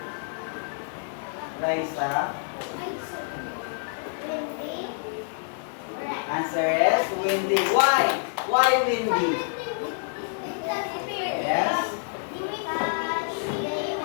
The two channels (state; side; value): silent; right; digital silence